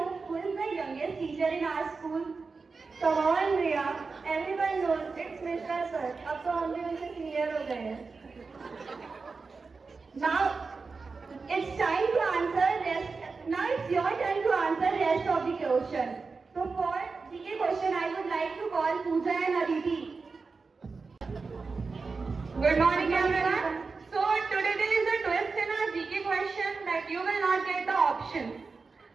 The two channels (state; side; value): quieter; left; 4.4 dB